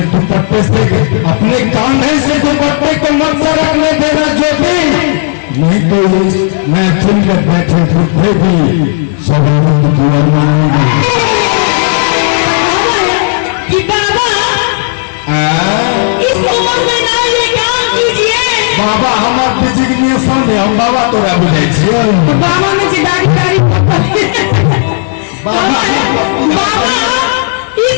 दुपट्टे से, अपने कांधे से दुपट्टे को मत से रखने देना ज्योति, नहीं तो मैं चुन में बैठे बुढ़े भी सवालों की दुआ मांगेंगे। कि बाबा इस उम्र में ना ये काम कीजिए। बाबा हमार डिजिग्नेशन है, हम बाबा तोरा बुझे छियै। बाबा ने जिदारी बाबा इस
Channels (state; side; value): silent; right; digital silence